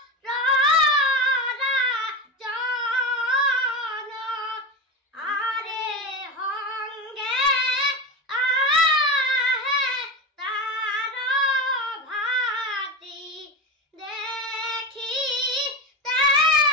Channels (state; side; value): normal; both; correlation 0.21